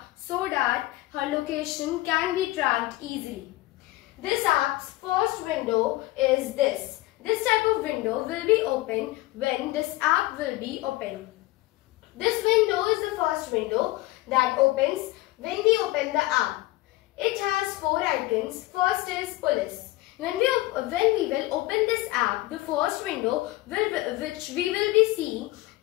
so that her location can be tracked easily. This app's first window is this. This type of window will be open when this app will be open. This window is the first window that opens when we open the app. It has 4 icons. First is police. When we will open this app, the first window which we will be seeing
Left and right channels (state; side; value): quieter; right; 18.7 dB